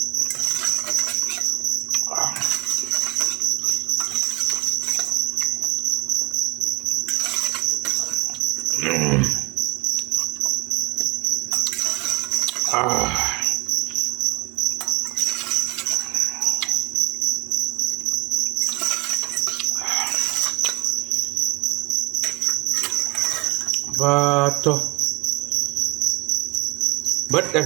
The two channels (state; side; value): quieter; left; 26.5 dB